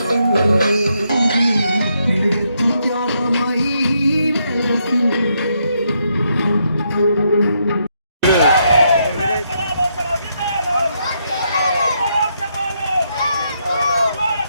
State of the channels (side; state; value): both; inverted; correlation -0.78